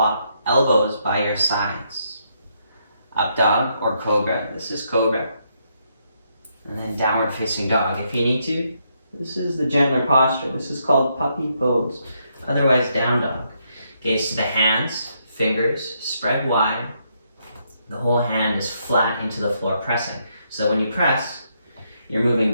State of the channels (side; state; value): both; inverted; correlation -0.76